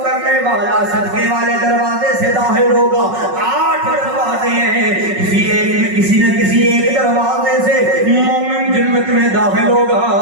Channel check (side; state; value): left; late; 5.4 ms